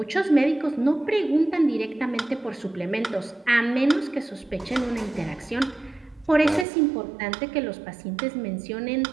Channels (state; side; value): drops out; left; at 6.7 s